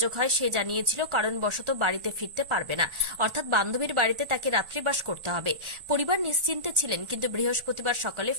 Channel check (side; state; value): left; late; 1.4 ms